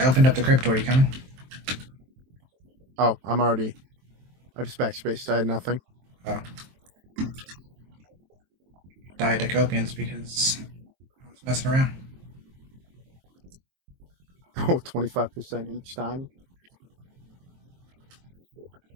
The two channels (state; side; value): late; left; 23 ms